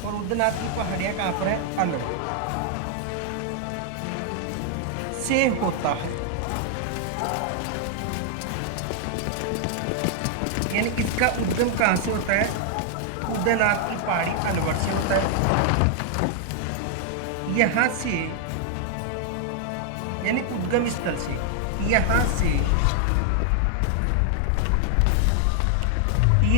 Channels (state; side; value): different; both; correlation 0.00